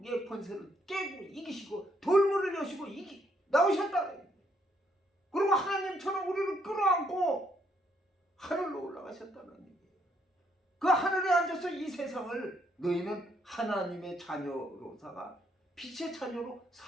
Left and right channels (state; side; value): normal; both; correlation 0.72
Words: 권세를 깨고 이기시고 돌문을 여시고 나오셨다. 그리고 하나님처럼 우리를 끌어안고 하늘로 올라가셨다는 얘기예요. 그 하늘에 앉아서 이 세상을 너희는 하나님의 자녀로다가 빛의 자녀로